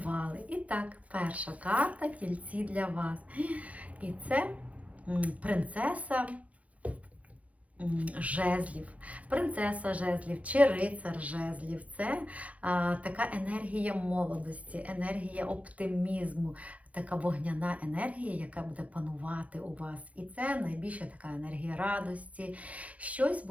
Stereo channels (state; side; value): late; left; 0.066 ms